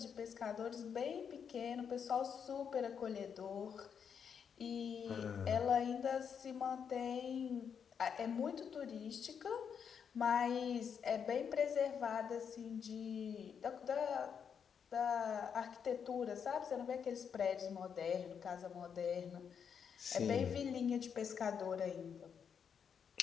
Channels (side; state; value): right; quieter; 7.2 dB